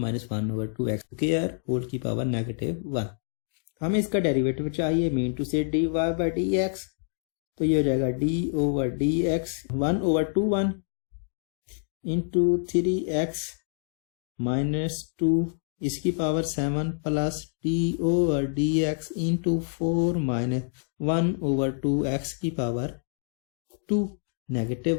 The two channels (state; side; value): silent; right; digital silence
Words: square whole की पावर -1। हमें इसका डेरिवेटिव चाहिए। Mean to say dy by dx, तो ये हो जाएगा d over dx 1/21 into 3x - 2 इसकी power 7 plus d over dx into 4 - 1/2x की पावर 2